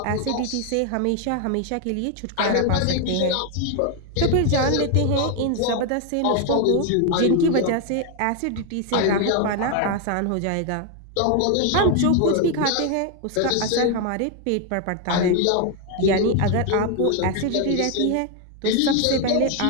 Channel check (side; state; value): both; different; correlation 0.01